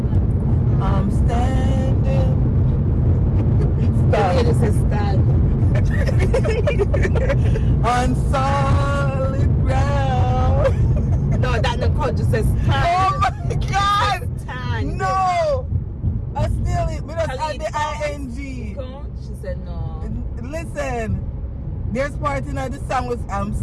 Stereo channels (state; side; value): identical; both; correlation 1.00